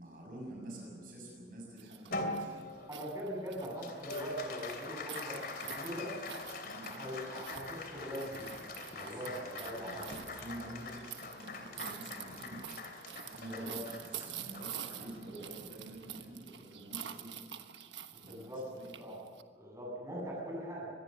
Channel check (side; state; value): both; normal; correlation 0.14